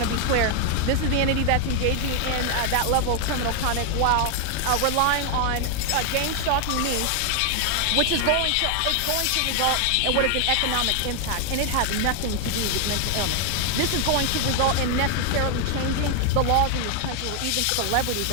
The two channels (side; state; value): both; different; correlation 0.00